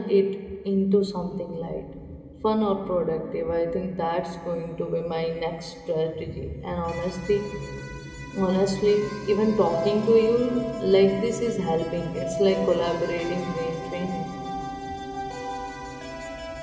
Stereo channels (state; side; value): identical; both; correlation 1.00